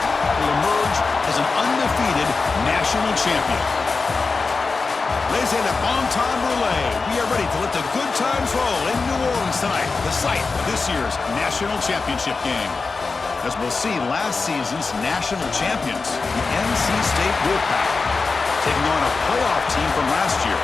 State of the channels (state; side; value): quieter; right; 4.3 dB